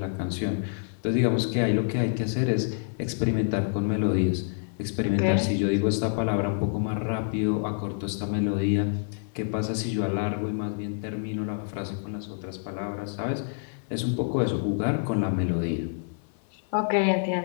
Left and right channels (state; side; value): silent; right; 58 dB below the other